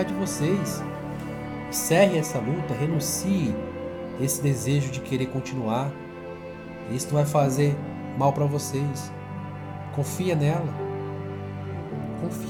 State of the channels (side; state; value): both; identical; correlation 1.00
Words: de vocês. Encerre essa luta, renuncie esse desejo de querer continuar. Isso não vai fazer mal para vocês. Confia nela.